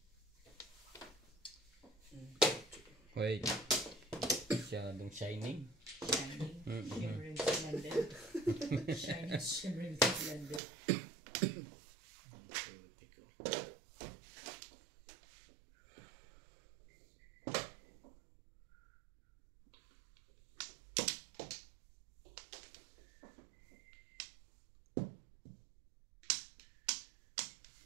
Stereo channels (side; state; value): left; drops out; at 10.6 s